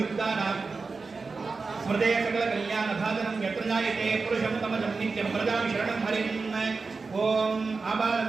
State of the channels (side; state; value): left; quieter; 4.3 dB